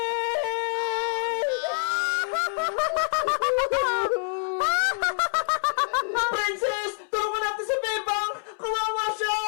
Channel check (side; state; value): right; silent; 61 dB below the other